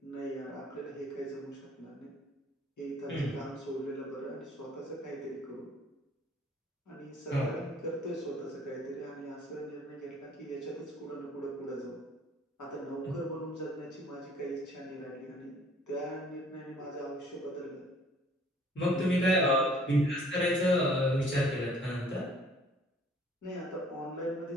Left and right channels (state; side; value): normal; both; correlation 0.57